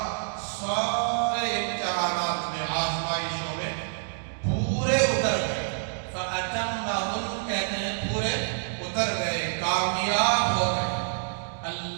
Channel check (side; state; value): left; silent; digital silence